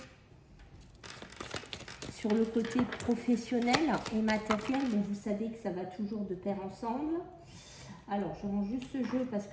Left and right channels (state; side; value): identical; both; correlation 1.00